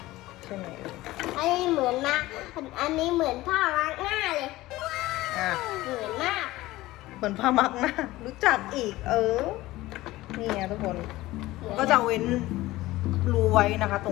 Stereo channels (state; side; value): quieter; right; 17.8 dB